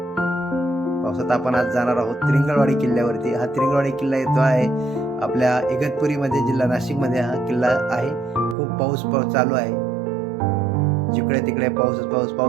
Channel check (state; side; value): drops out; left; at 8.6 s